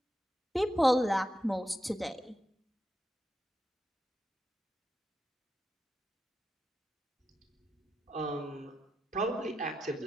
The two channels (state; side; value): normal; both; correlation 0.87